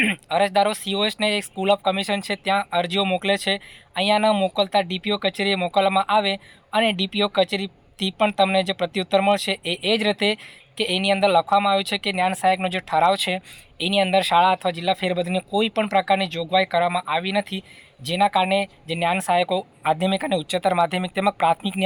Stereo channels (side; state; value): both; identical; correlation 1.00